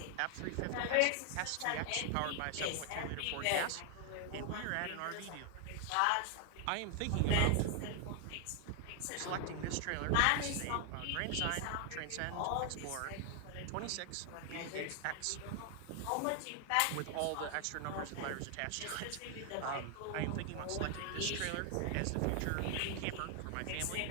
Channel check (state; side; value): different; both; correlation 0.00